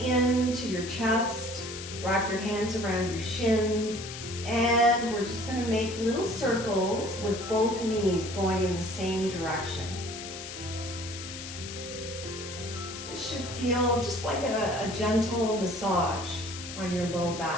your chest. Wrap your hands around your shins. And we're just going to make little circles with both knees going in the same direction. This should feel just like a gentle massage on your low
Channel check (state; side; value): noise; left; hiss, 10 dB below the sound